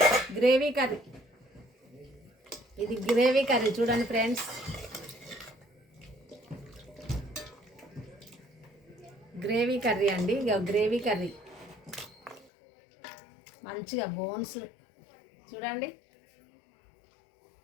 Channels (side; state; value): right; drops out; at 12.5 s